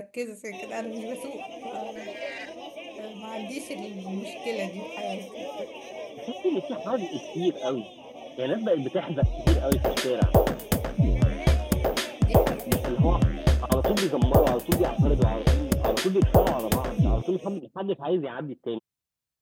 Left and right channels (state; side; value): identical; both; correlation 1.00